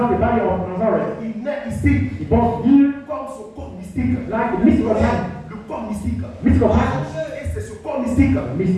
the body of Nazareth. Il naît ici He born here comme son corps mystique. like the mystical body. Le corps mystique. Mystical body. Et c'est ce corps mystique,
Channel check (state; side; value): identical; both; correlation 1.00